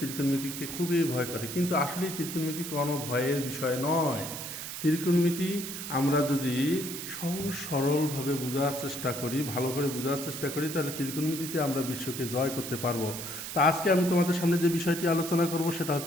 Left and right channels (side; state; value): right; noise; hiss, 7 dB below the sound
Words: ত্রিকোণমিতিকে খুবই ভয় করে, কিন্তু আসলে ত্রিকোণমিতি কোনো ভয়ের বিষয় নয়। ত্রিকোণমিতি আমরা যদি সহজ সরলভাবে বোঝার চেষ্টা করি, ভালো করে বোঝার চেষ্টা করি, তাহলে ত্রিকোণমিতিতে আমরা বিশ্বকে জয় করতে পারবো। তা আজকে আমি তোমাদের সামনে যে বিষয়টি আলোচনা করব সেটা